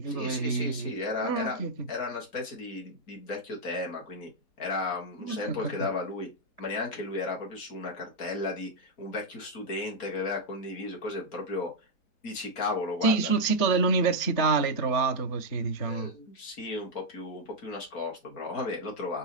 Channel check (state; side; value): late; right; 4.3 ms